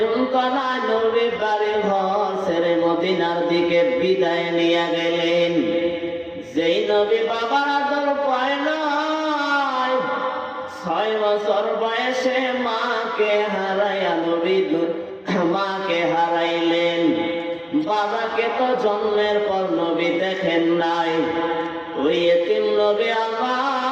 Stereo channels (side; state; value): both; identical; correlation 1.00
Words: নবী বাড়ি ঘর ছেড়ে মদিনার দিকে বিদায় নিয়ে গেলেন। যেই নবী বাবার আদর পায় নাই, 6 বছর বয়সে মাকে হারাইয়া নবী মাকে হারাইলেন। বাবাকে তো জন্মের পর নবী দেখেন নাই। ওই এতিম নবী